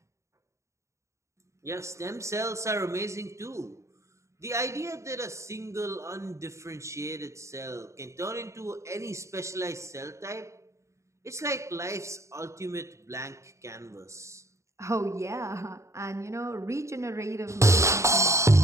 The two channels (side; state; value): left; late; 0.14 ms